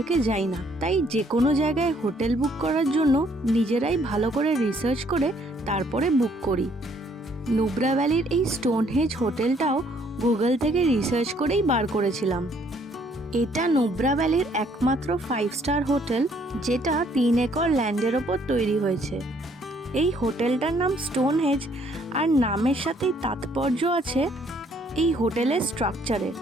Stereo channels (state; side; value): normal; both; correlation 0.65